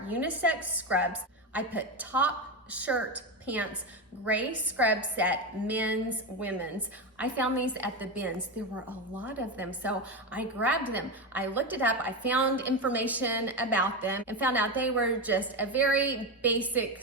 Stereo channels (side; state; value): both; normal; correlation 0.15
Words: unisex scrubs. I put top, shirt, pants, gray scrub set, men's, women's. I found these at the bins. There were a lot of them, so I grabbed them. I looked it up, I found information about them and found out they were just a very basic